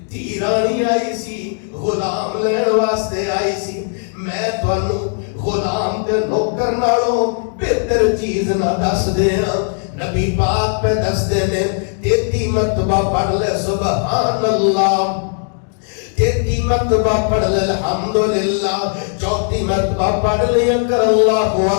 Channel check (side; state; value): right; silent; 61 dB below the other